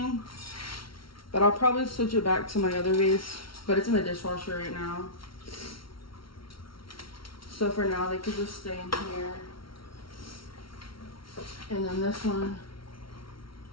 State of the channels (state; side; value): late; right; 0.74 ms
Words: but I'll probably switch it back to my other vase, but it's in the dishwasher right now. So for now, they could just stay in here. And then this one